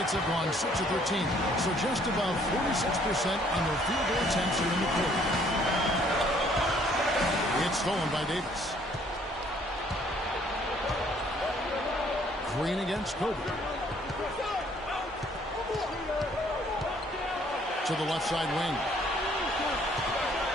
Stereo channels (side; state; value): both; normal; correlation 0.62